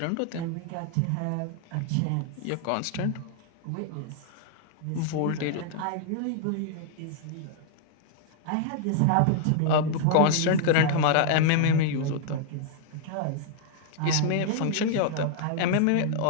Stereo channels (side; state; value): both; different; correlation -0.01